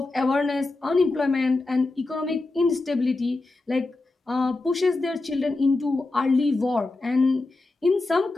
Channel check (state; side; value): quieter; right; 3.2 dB